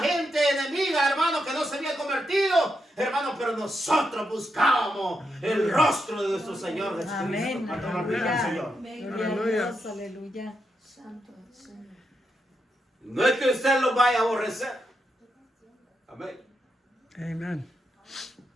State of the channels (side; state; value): both; normal; correlation 0.83